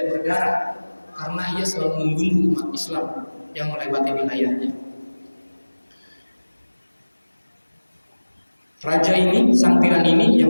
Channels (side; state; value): both; inverted; correlation -1.00